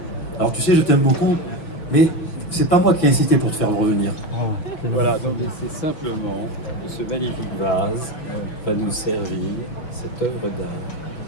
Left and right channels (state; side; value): late; right; 6.3 ms